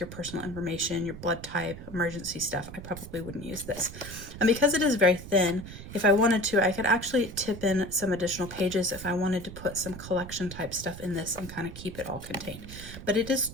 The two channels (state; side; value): noise; right; rumble, 12 dB below the sound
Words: your personal information, your blood type, emergency stuff. I probably wouldn't use this. And because it is very thin, if I wanted to, I could actually tip in some additional pages if I wanted to put some collection type stuff in this and kind of keep it all contained. But it is